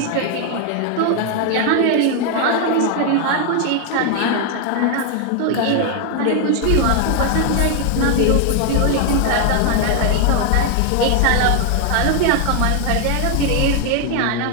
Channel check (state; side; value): different; both; correlation 0.00